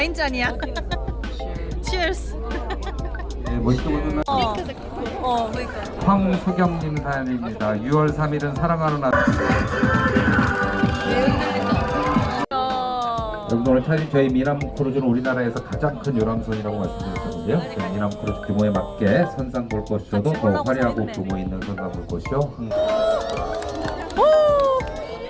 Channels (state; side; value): identical; both; correlation 1.00